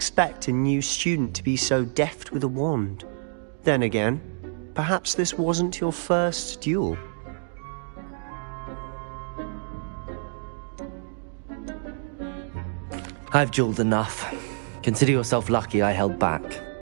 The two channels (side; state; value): left; silent; digital silence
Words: a new student to be so deft with a wand. Then again, perhaps this wasn't your first duel. I've dueled enough. Consider yourself lucky I held back.